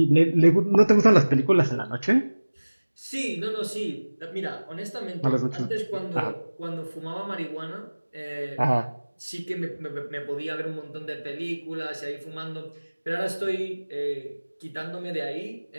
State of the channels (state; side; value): inverted; both; correlation -1.00